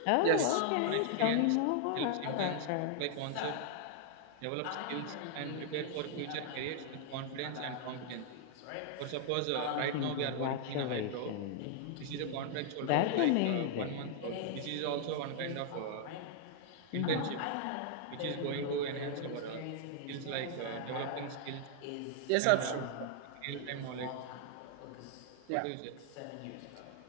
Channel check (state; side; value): different; both; correlation -0.01